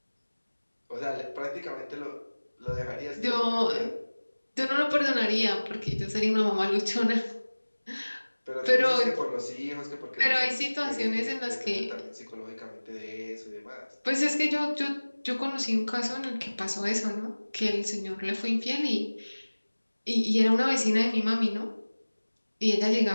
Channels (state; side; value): inverted; both; correlation -1.00